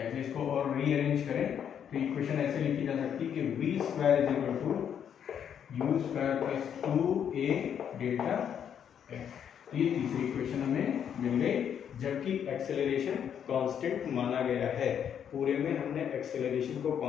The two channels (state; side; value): quieter; right; 8.6 dB